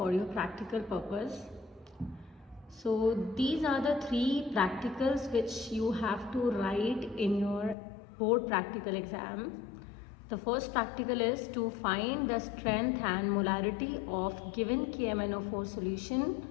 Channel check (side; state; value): right; drops out; at 7.8 s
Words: your practical purpose. So these are the three practicals which you have to write in your board practical exam. The first practical is to find the strength and molarity of given KMnO4